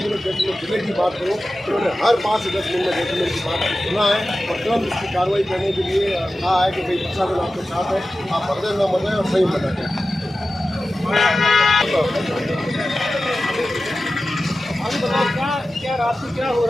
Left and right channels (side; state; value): both; normal; correlation 0.94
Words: जैसलमेर जिले की बात करूँ तो उन्होंने हर 5 से 10 मिनट में जैसलमेर की बात सुना है और तुरंत इसकी कार्रवाई करने के लिए कहा है कि भाई प्रशासन आपके साथ है, आप मदद न मदद और सही मदद है। क्या रात में क्या हो